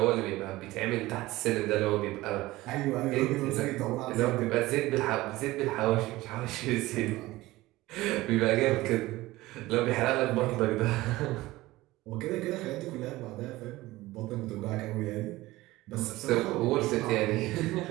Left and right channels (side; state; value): left; quieter; 18.4 dB